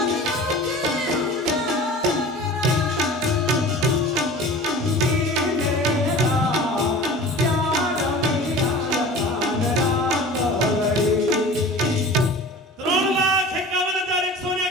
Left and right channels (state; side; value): normal; both; correlation 0.39